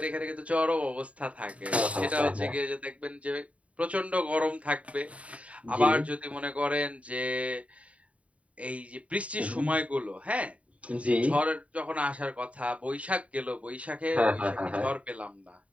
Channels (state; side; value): late; left; 0.065 ms